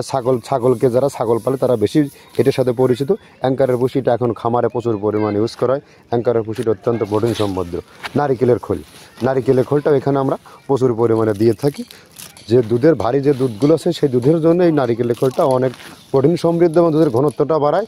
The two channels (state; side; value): identical; both; correlation 1.00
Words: ছাগলকে যারা ছাগল পালে তারা বেশি এটার সাথে পরিচিত। অ্যাঙ্কারের ভুসিটা এখন খামারে প্রচুর পরিমাণে ইউজ করা হয়। অ্যাঙ্কারের ভুসিটা অত্যন্ত প্রোটিন সমৃদ্ধ। নারিকেলের খোলটাও এখানে আমরা প্রচুর পরিমাণে দিয়ে থাকি। যে দুধের ভারী যে দুধগুলো আছে সেই দুধের জন্য এই নারিকেলের খোলটা অনেক প্রোটিন সমৃদ্ধ এবং দুধের ঘনত্বটা বাড়ায়,